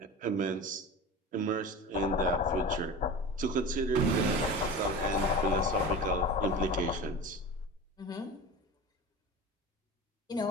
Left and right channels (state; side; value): normal; both; correlation 0.32